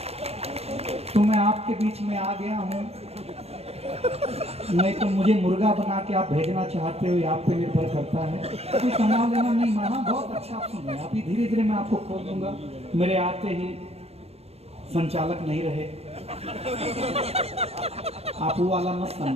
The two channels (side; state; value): left; late; 0.30 ms